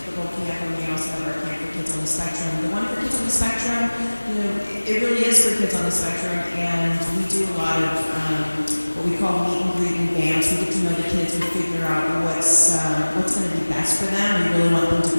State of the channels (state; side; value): inverted; both; correlation -1.00